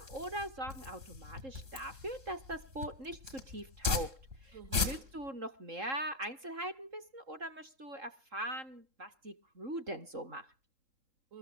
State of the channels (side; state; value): left; late; 3.6 ms